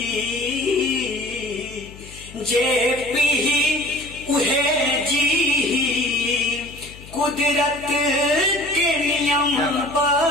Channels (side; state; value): left; noise; hum, 18 dB below the sound